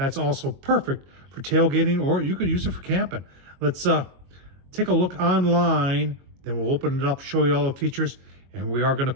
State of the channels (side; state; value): left; late; 22 ms